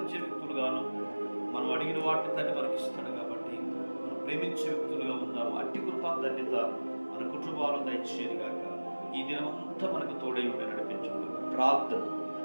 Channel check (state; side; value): inverted; both; correlation -1.00